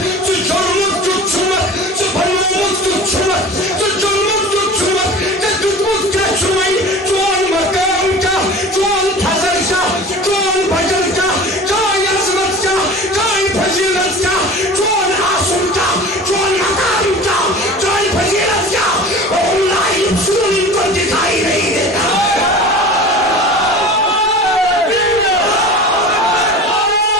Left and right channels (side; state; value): both; normal; correlation 0.37